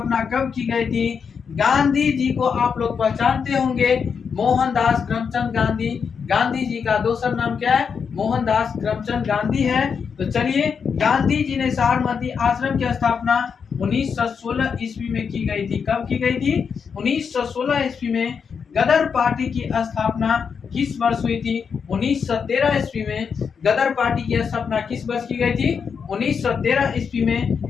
कब की गई थी? गांधी जी को आप लोग पहचानते होंगे, मोहनदास करमचंद गांधी। गांधी जी का दूसरा नाम क्या है? मोहनदास करमचंद गांधी है। तो चलिए गांधी जी ने साबरमती आश्रम की स्थापना 1916 ईस्वी में की गई थी। कब की गई थी? 1916 ईस्वी में। गदर पार्टी की स्थापना किस वर्ष हुई थी? 1913 ईस्वी में। गदर पार्टी की स्थापना किस वर्ष की गई थी? 1913 ईस्वी में।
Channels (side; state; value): right; quieter; 6.3 dB